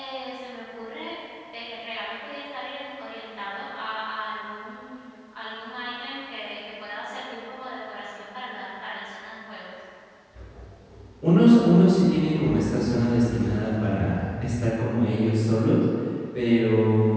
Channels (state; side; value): identical; both; correlation 1.00